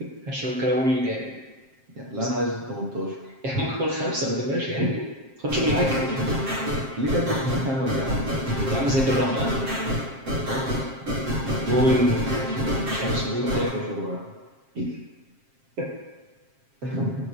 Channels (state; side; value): late; left; 7.5 ms